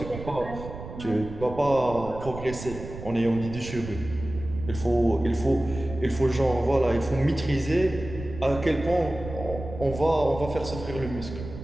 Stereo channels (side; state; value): right; noise; rumble, 11 dB below the sound